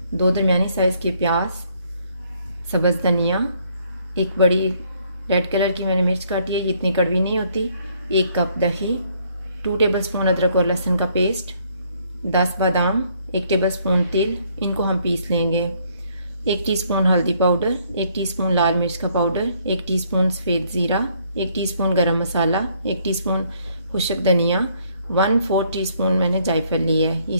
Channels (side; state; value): both; inverted; correlation -0.67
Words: 2 दरमियानी साइज़ के प्याज, सब्ज़ धनिया, एक बड़ी रेड कलर की मैंने मिर्च काटी है, इतनी कड़वी नहीं होती, 1 कप दही, 2 टेबलस्पून अदरक और लहसुन का पेस्ट, 10 बादाम, 1 टेबलस्पून तेल, इनको हम पीस लेंगे। 1 टीस्पून हल्दी पाउडर, 1 टीस्पून लाल मिर्च का पाउडर, 1 टीस्पून सफ़ेद ज़ीरा, 1 टीस्पून गरम मसाला, 1 टीस्पून खुश्क धनिया, 1/4 टीस्पून मैंने जायफल लिया है,